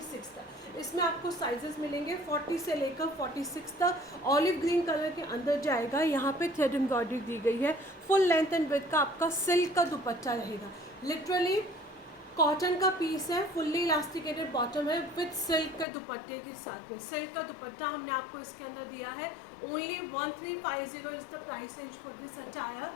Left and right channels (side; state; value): right; drops out; at 15.9 s